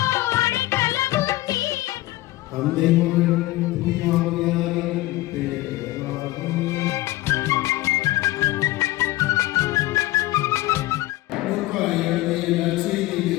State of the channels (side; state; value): right; quieter; 17.4 dB